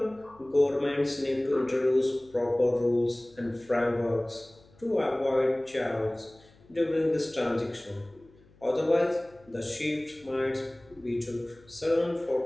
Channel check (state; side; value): noise; left; hum, 28 dB below the sound